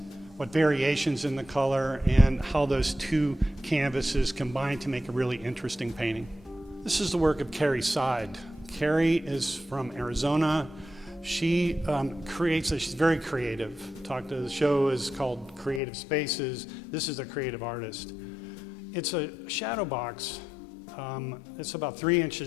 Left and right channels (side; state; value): right; drops out; at 15.8 s